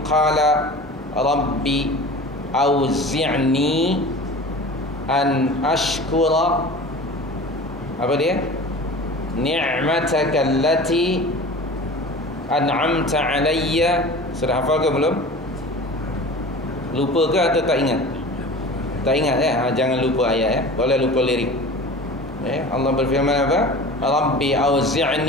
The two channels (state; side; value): normal; both; correlation 0.37